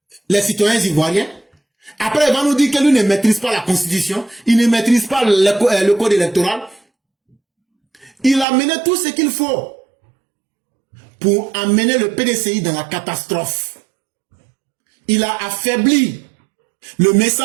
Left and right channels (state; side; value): drops out; left; at 8.5 s